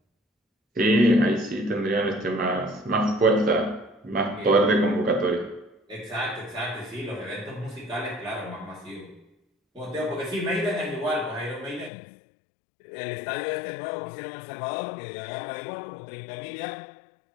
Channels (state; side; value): drops out; right; at 11.9 s